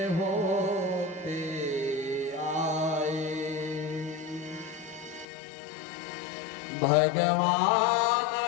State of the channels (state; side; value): drops out; right; at 5.2 s